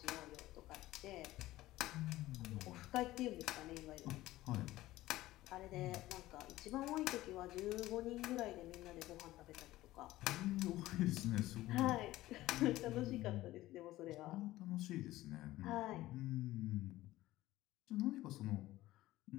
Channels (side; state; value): right; quieter; 16.5 dB